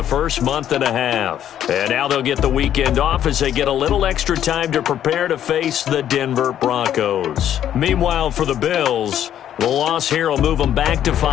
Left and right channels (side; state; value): right; quieter; 10.6 dB